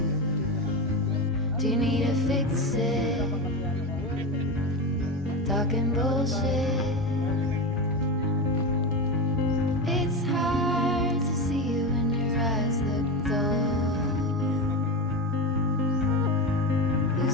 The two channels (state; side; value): normal; both; correlation 0.20